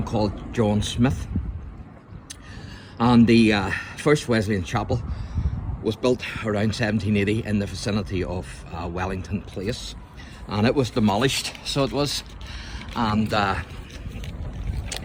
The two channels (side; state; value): both; identical; correlation 1.00